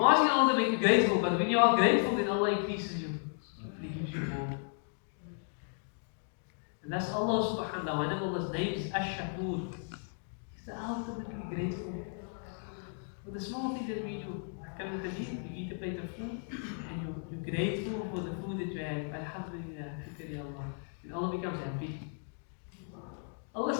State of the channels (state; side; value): silent; right; 55 dB below the other